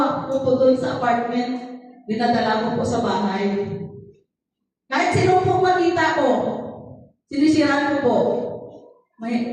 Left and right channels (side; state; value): both; identical; correlation 1.00